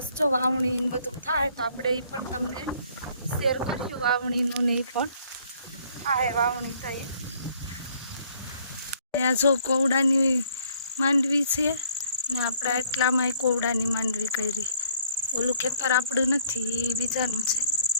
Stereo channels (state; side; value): inverted; both; correlation -0.62